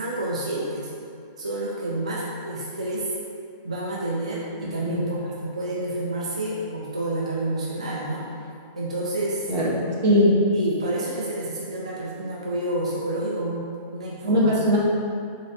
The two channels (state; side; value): inverted; both; correlation -0.42